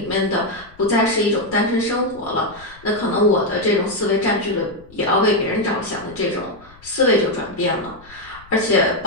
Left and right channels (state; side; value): noise; left; rumble, 24 dB below the sound